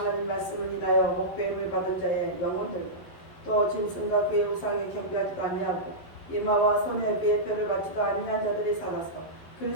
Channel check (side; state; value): right; late; 11 ms